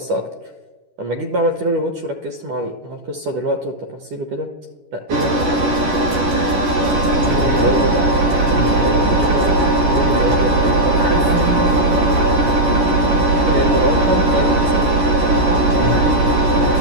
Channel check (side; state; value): left; late; 11 ms